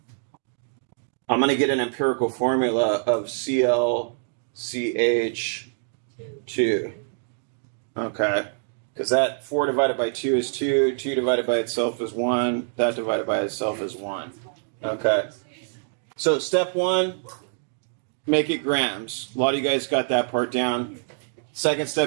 I'm going to get an empirical formula of ClCH2. Okay, because that 4 divided by 2 is 2, 2 divided by itself is 1, that divided by itself is 1. Okay, so step 1, make it grams. A lot of you guys got that part down. Second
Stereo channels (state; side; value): silent; left; digital silence